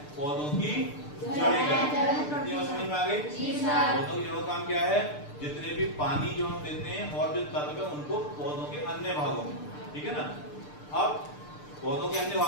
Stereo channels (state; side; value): late; right; 6.7 ms